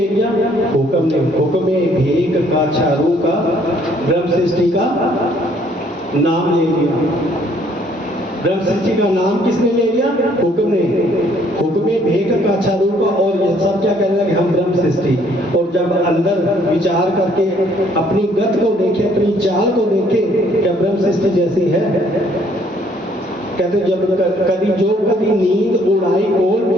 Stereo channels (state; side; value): normal; both; correlation 0.63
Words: लिया? हुक्म ने। हुक्म में भेक का, चारू का, ब्रह्म सृष्टि का नाम ले लिया। ब्रह्म सृष्टि का नाम किसने ले लिया? हुक्म ने। हुक्म में भेक का, चारू का, और ये सब क्या कहने लगे? हम ब्रह्म सृष्टि। और जब अंदर विचार करके अपनी गत को देखे, अपनी चाल को देखे, क्या ब्रह्म सृष्टि जैसी है? कहते जब कभी नींद उड़ाई कोल